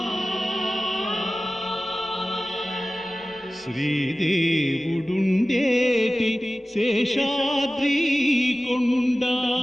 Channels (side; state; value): both; normal; correlation 0.96